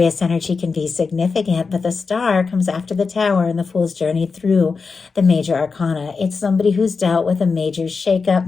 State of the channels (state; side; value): quieter; right; 4.8 dB